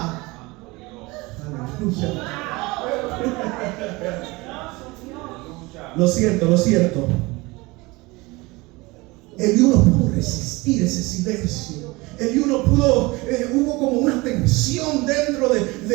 Aleluya. Lo siento. Eliú no pudo resistir ese silencio. Eliú no pudo, hubo como una tensión dentro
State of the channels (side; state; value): left; quieter; 23.2 dB